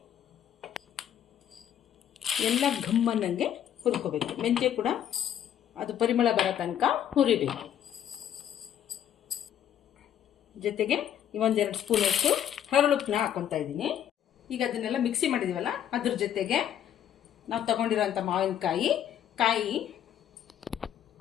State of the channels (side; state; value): right; quieter; 10.0 dB